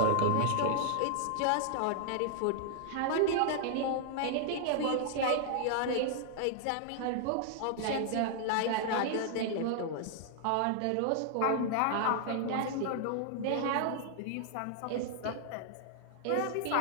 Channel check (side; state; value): both; different; correlation -0.01